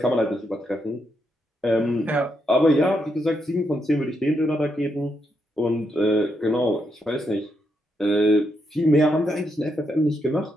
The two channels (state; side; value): normal; both; correlation 0.80